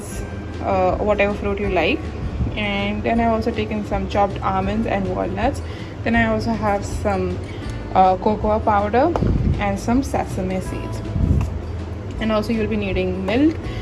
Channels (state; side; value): identical; both; correlation 1.00